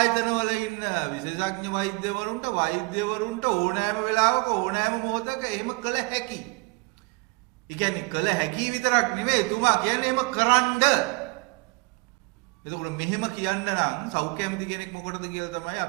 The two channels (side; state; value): left; quieter; 28.0 dB